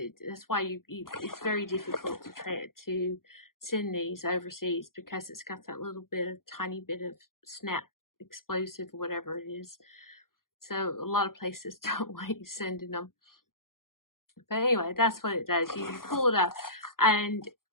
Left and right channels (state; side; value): late; right; 0.92 ms